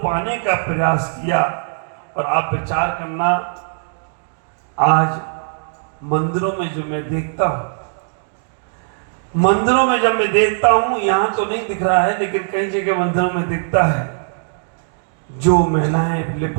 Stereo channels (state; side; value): silent; left; digital silence